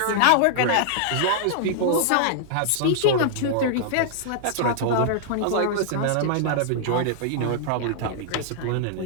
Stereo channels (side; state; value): both; different; correlation -0.01